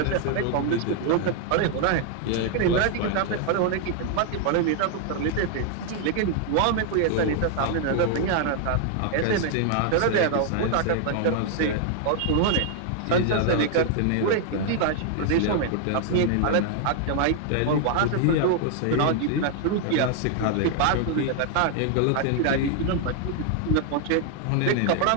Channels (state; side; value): different; both; correlation 0.00